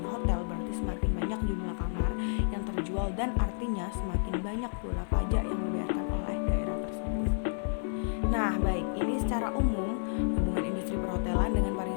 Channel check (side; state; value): right; silent; digital silence